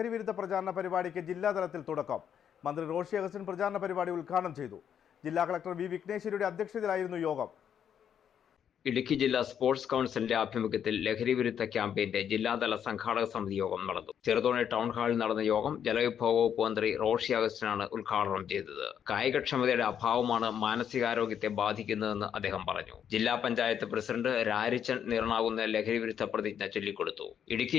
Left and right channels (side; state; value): right; quieter; 8.7 dB